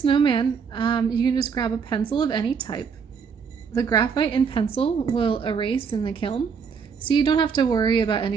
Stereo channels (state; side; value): quieter; left; 6.2 dB